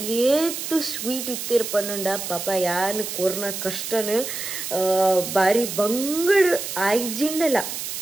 ಸ್ವೀಟ್ ಇತ್ತಿರ್ ಪನ್ನುಂಡ ಪಾಪ ಯಾನ್ ಕೊರ್ನ ಕಷ್ಟನು ಬಾರಿ ಬಂಗಡ್ ಆಯ್ಜಿಂಡಲ್ಲ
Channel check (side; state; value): right; noise; hiss, 6 dB below the sound